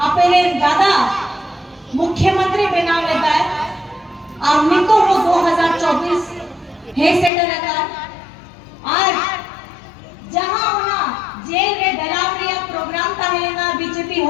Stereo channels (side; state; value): right; drops out; at 7.3 s